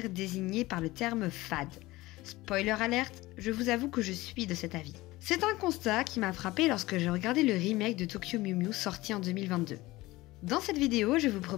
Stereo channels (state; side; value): quieter; right; 19.4 dB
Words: désigné par le terme fade. Spoiler alerte, je vous avoue que je suis de cet avis. C'est un constat qui m'a frappé lorsque j'ai regardé le remake de Tokyo Mew Mew sorti en 2022. Dans cette vidéo, je vous